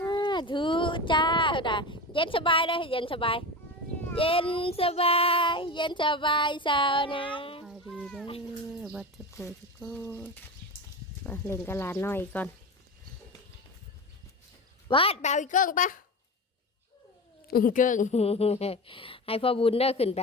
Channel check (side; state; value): both; normal; correlation 0.25